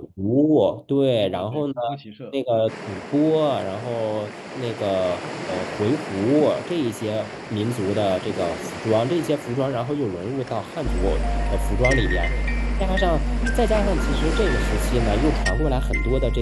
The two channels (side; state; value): both; identical; correlation 1.00